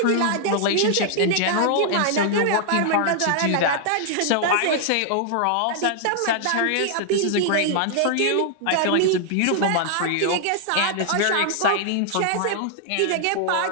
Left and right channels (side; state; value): both; different; correlation -0.01